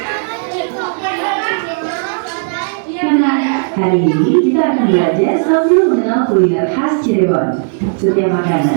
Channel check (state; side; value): silent; left; digital silence